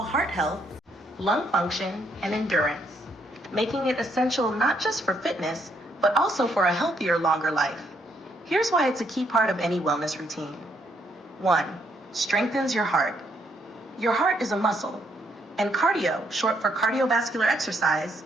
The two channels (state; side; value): normal; both; correlation 0.72